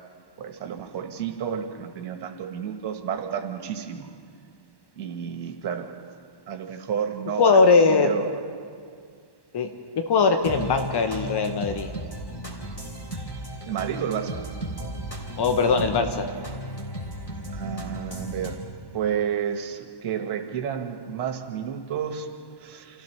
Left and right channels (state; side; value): late; right; 1.1 ms